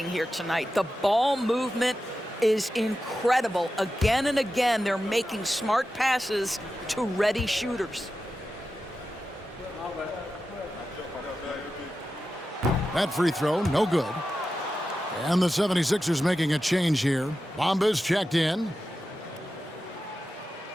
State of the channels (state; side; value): normal; both; correlation 0.92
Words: here tonight, the ball movement is incredible. Again and again, they're making smart passes to ready shooters. That free throw, no good. And the 76ers making a change here. Bamba's checked in.